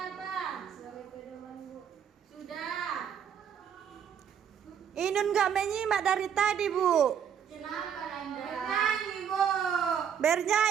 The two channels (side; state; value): left; quieter; 8.1 dB